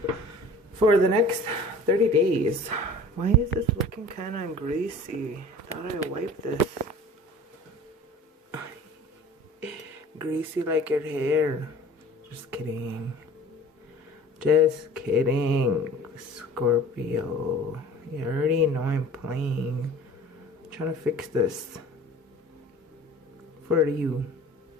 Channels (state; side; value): normal; both; correlation 0.44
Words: for the next 30 days. Why is this looking kind of greasy? Thought I wiped this. Greasy like your hair. Just kidding. Just kidding, Scorpio. You already know I'm playing. I'm trying to fix this for you.